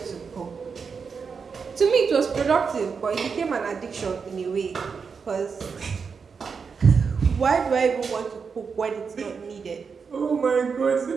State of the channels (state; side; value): quieter; left; 5.7 dB